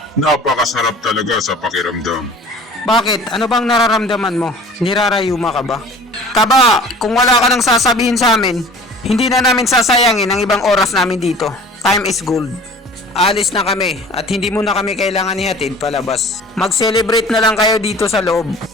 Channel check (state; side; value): normal; both; correlation 0.44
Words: Napakasarap talaga sa pakiramdam. Bakit? Ano bang nararamdaman mo? Nirarayuma ka ba? Taba, kung wala ka nang sasabihin sa amin, hindi na namin sasayangin ang ibang oras namin dito. Time is gold. Alis na kami at hindi mo na kami kailangan ihatid palabas. Mag-celebrate na lang kayo dito sa loob.